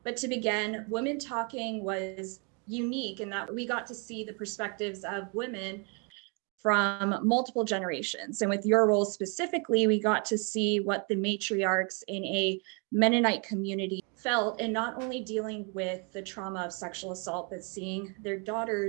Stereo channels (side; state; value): left; quieter; 35.1 dB